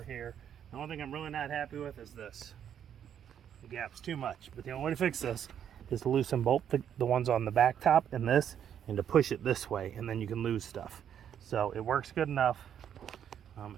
here. The only thing I'm really not happy with is this. The gap's too much, but the only way to fix this is to loosen both the ones on the back top and this, and to push it this way, and then you can lose stuff. So it works good enough.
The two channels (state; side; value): quieter; left; 9.2 dB